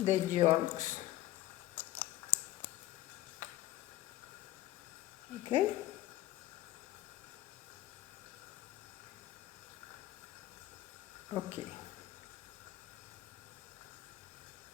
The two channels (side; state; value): right; quieter; 15.4 dB